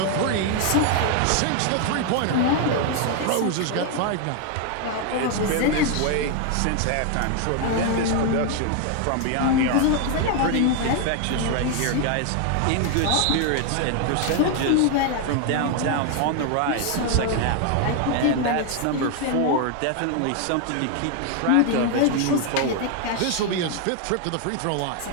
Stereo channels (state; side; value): different; both; correlation 0.00